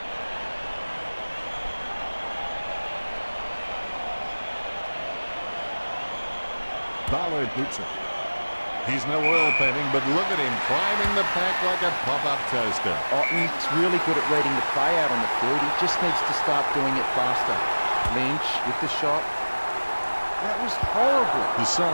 Ballard boots it. He's no oil painting, but look at him climbing the pack like a pop-up toaster. Otten's really good at reading the play out on the field. He just needs to start doing it faster. Lynch with the shot. That was horrible. The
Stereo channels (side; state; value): both; inverted; correlation -1.00